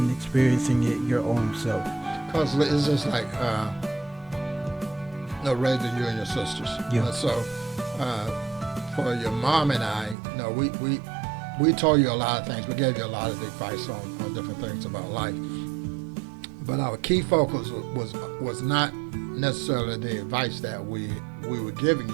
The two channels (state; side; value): drops out; left; at 10.2 s